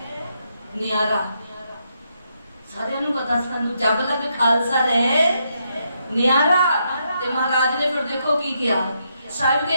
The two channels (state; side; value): inverted; both; correlation -0.79